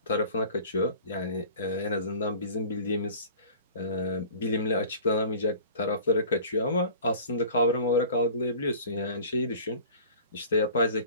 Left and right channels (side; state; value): both; inverted; correlation -0.44